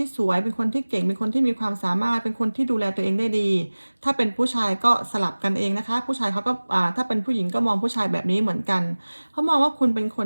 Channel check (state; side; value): inverted; both; correlation -1.00